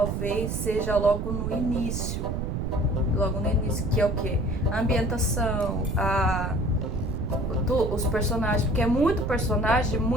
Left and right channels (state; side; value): noise; right; rumble, 2 dB below the sound